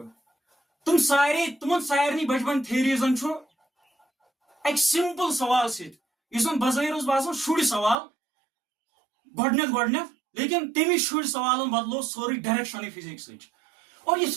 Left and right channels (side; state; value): left; drops out; at 8.0 s